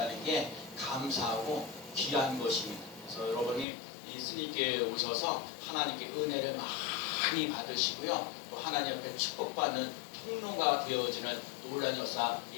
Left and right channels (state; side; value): drops out; right; at 3.7 s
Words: 게 감사하고 귀한 것입니다. 그래서 여러분이 이 승리교회에 오셔서 하나님께 은혜를 많이 받으시고요. 또 하나님 앞에 축복받는 통로가 되어지는 놀라운 역사